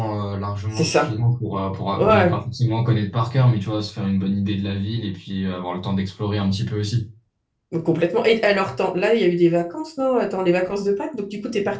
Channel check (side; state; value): both; identical; correlation 1.00